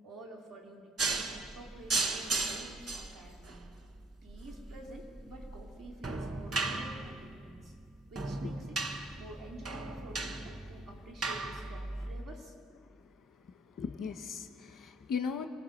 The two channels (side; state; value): both; normal; correlation 0.61